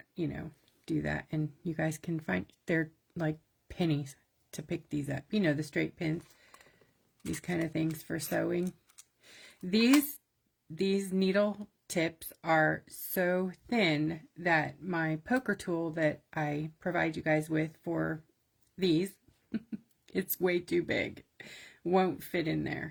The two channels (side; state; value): both; identical; correlation 1.00